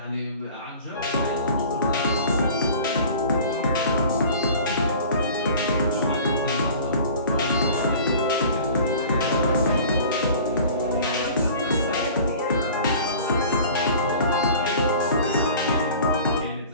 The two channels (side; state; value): both; inverted; correlation -0.45